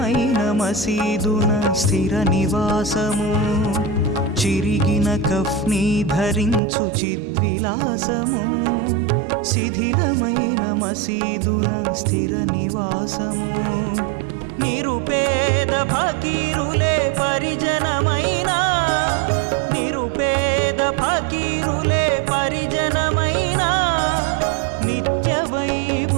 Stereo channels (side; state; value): left; drops out; at 6.6 s